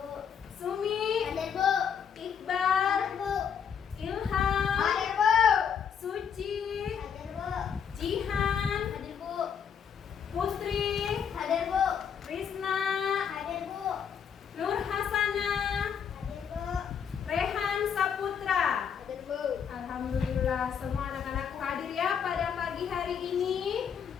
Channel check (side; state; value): right; quieter; 7.6 dB